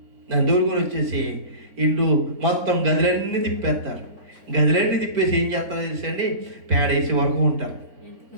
దాన్ని తోలుకొని వచ్చేసి ఇల్లు మొత్తం గదులన్నీ తిప్పేస్తారు. గదులన్నీ తిప్పేసి ఏం చేస్తారో తెలుసండి? పేడేసి వరకు ఉంటారు.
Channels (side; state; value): left; late; 3.9 ms